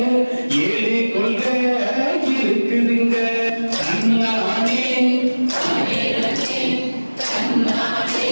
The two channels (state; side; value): inverted; both; correlation -1.00